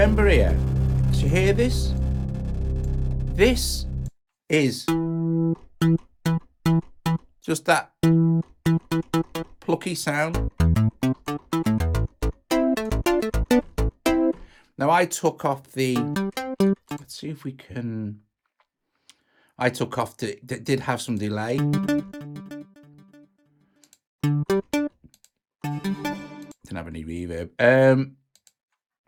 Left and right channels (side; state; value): both; identical; correlation 1.00